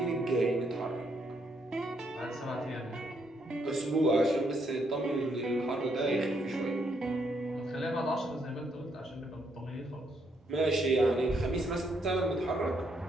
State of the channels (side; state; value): both; normal; correlation 0.74